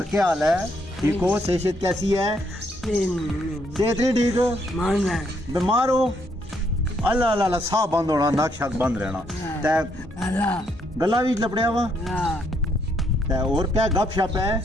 क्या हाल है ठीक हो सेहत कैसी है सेहत नहीं ठीक हो बीमार हो अल्लाह अल्लाह साह बंद होना नक शक बंद रहना गला भी लपड़िया वा और क्या गप शप है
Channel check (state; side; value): normal; both; correlation 0.73